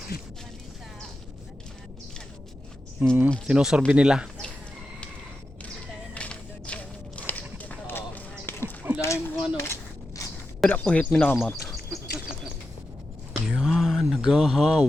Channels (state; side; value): normal; both; correlation 0.90